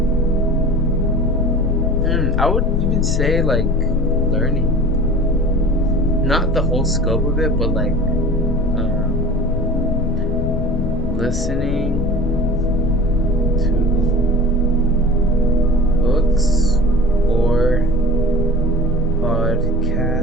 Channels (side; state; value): left; noise; rumble, 5 dB below the sound